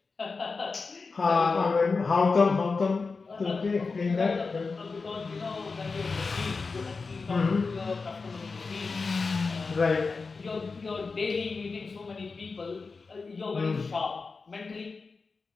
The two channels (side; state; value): right; quieter; 4.4 dB